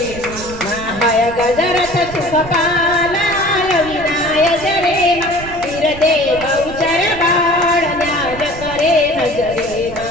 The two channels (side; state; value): right; noise; rumble, 14 dB below the sound